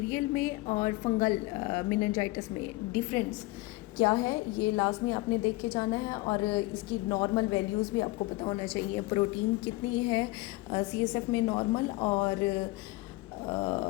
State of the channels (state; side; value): quieter; right; 20.4 dB